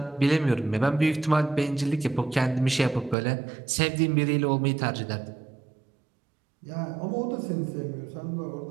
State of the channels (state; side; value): drops out; left; at 3.2 s